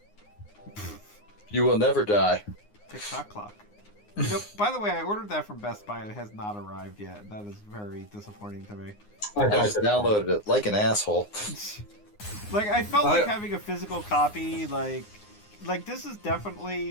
You will never die. Tick-tock clock. You know, by the way, I ordered that from Best Buy and it has not arrived yet. That is very disappointing to me. I just downloaded it like an asshole. Like, I felt like having a physical copy, like this is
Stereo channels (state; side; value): late; right; 9.7 ms